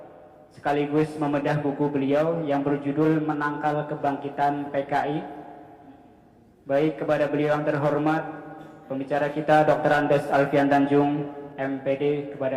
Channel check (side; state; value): both; identical; correlation 1.00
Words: sekaligus membedah buku beliau yang berjudul Menangkal Kebangkitan PKI. Baik, kepada beliau yang terhormat pembicara kita Dr. Andes Alfian Tanjung MPD,